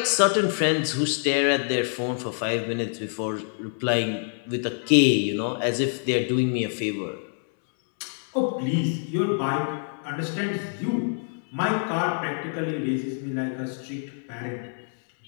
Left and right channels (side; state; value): right; silent; 61 dB below the other